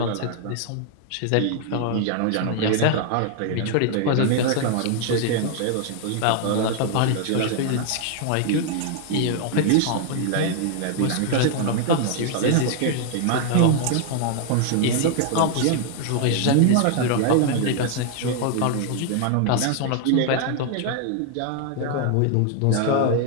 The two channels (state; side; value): different; both; correlation 0.00